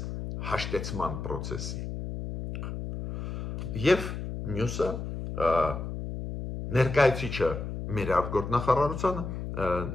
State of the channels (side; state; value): left; noise; hum, 6 dB below the sound